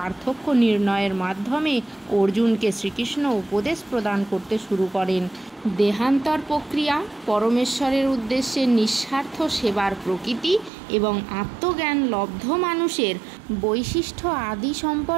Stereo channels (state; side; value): drops out; left; at 10.7 s